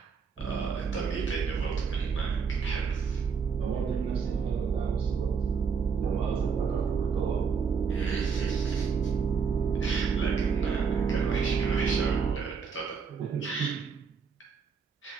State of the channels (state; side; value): quieter; left; 5.9 dB